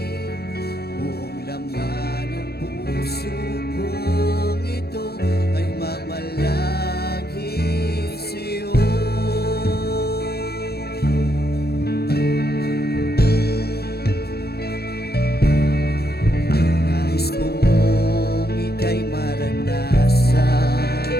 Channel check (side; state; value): right; late; 0.46 ms